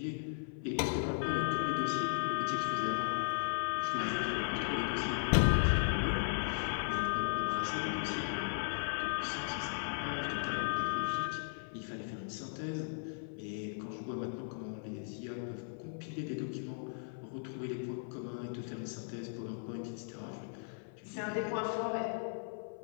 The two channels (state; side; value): silent; right; 53 dB below the other